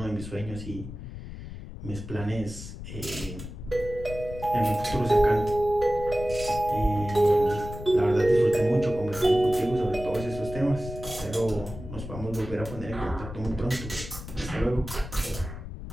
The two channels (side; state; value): left; noise; rumble, 10 dB below the sound